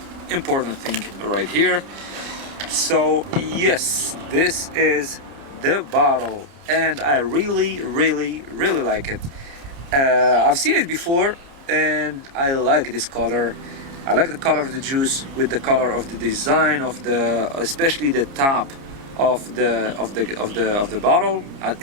important thing right here. So yes, this is the bottle, and I really like it. I've seen it before and I like this color. I like the color of the juice with the color of the design of especially the top of the bottle.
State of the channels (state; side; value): late; left; 29 ms